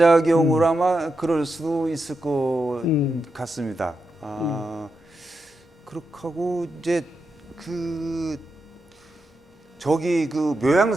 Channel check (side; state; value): both; normal; correlation 0.86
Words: 아마 그럴 수도 있을 것 같습니다. 그렇게 하고 이제 그 저기 그